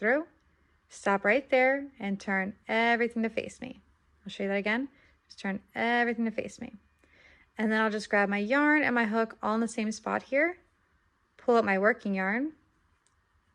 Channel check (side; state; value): both; identical; correlation 1.00